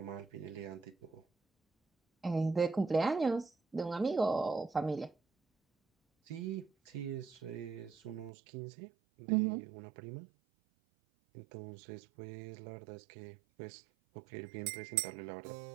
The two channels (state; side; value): drops out; left; at 8.3 s